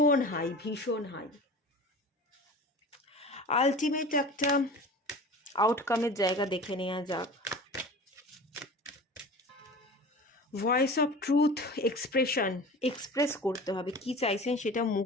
হাই, ভীষণ হাই। আলটিমেট একটা আউটকামের জায়গা দেখে নেওয়া যাক। ভয়েস অফ ট্রুথ, এক্সপ্রেস করতে হবে, কি চাইছেন সেটা মুখ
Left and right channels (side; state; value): both; normal; correlation 0.37